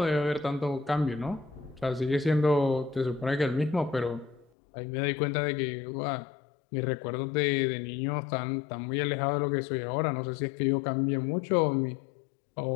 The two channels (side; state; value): right; drops out; at 4.5 s